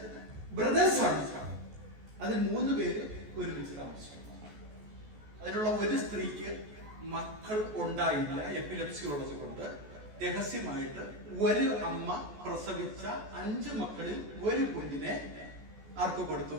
ബ്രദേഴ്സ് ആണ്. അതിൽ 3 പേര് ഒരുമിച്ച് താമസിക്കുന്നു. അതിലുള്ള ഒരു സ്ത്രീക്ക് മക്കൾ ഉണ്ടായില്ല, എപ്പിലെപ്സി ഉള്ളത് കൊണ്ട്. രഹസ്യമായിട്ട് ഒരു അമ്മ പ്രസവിച്ച 5 മക്കളിൽ ഒരു കുഞ്ഞിനെ ആർക്ക് കൊടുത്തു?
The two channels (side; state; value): left; late; 14 ms